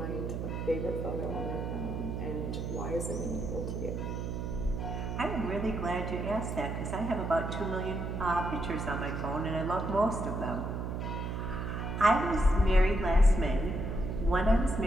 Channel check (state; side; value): noise; right; hum, 3 dB below the sound